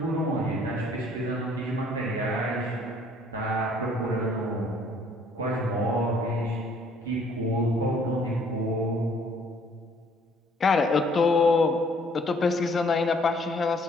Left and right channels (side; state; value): both; normal; correlation 0.61